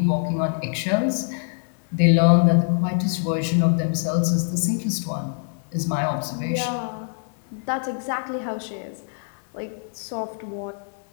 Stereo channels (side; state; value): right; silent; 63 dB below the other